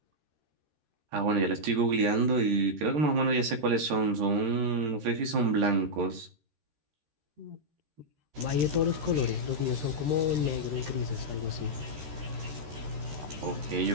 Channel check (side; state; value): left; late; 13 ms